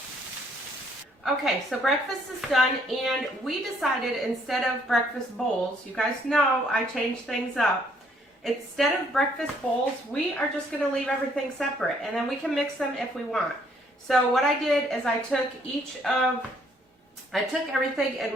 Okay, so breakfast is done, and we decided instead of breakfast bowls, you guys know I changed things up. instead of breakfast bowls, we are just going to leave everything separate, and then we can mix them if we want. So what I did is I took everything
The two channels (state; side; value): normal; both; correlation 0.66